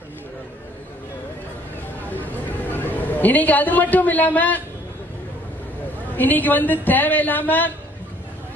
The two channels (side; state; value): both; normal; correlation 0.60